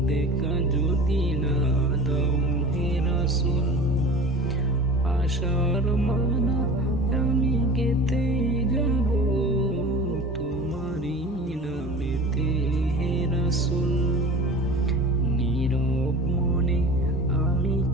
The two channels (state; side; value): normal; both; correlation 0.37